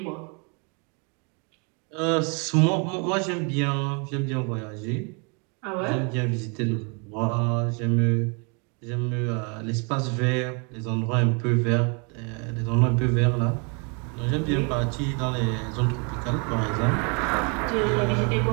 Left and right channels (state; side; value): quieter; left; 34.8 dB